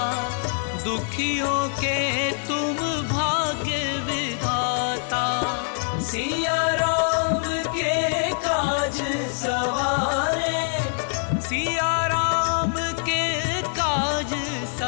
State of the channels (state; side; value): silent; right; digital silence